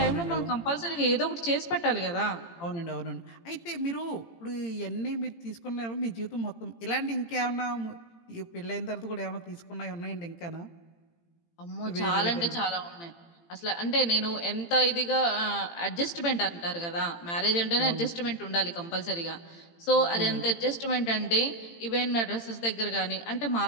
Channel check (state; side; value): late; right; 18 ms